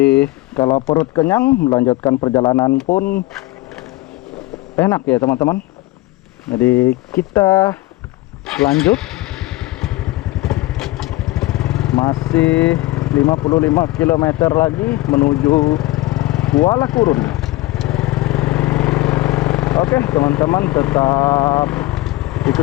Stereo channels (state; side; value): quieter; right; 18.6 dB